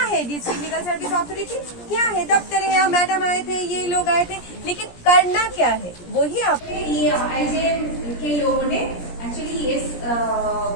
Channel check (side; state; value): right; late; 17 ms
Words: है डिस्ट्रिक्ट लीगल सर्विस अथॉरिटी? क्या है? दफ्तर है, यहाँ मैडम आए थे, ये लोग आए थे, लेकिन करना क्या है वही आप। ये आईजेएम के लोगों ने एक्चुअली इस